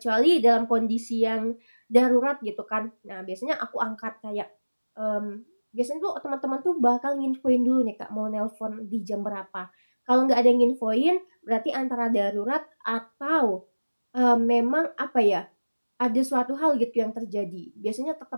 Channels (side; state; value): both; inverted; correlation -1.00